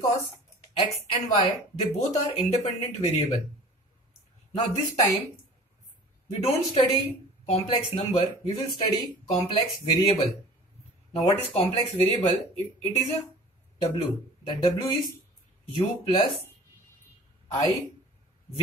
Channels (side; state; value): both; normal; correlation 0.44